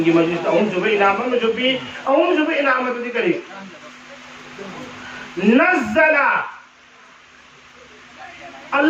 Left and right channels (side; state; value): both; identical; correlation 1.00